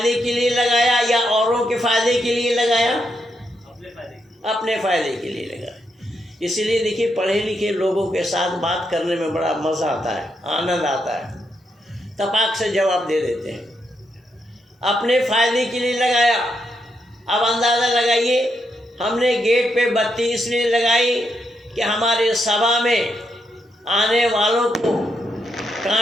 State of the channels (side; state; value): both; normal; correlation 0.80